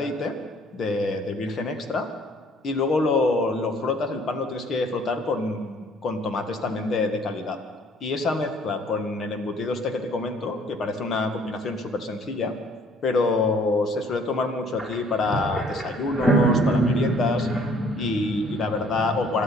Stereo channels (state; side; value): normal; both; correlation 0.58